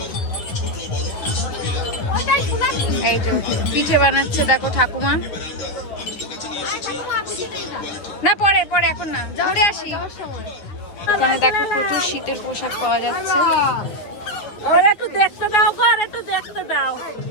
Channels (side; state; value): right; late; 9.8 ms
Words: এই যে পিঠে বানাচ্ছে দেখো ঠাকুমা। না পরে পরে, এখন না, ঘুরে আসি। এখানে দেখো প্রচুর শীতের পোশাক পাওয়া যাচ্ছে। একটু দেখতে দাও গো, আর একটু দেখতে দাও।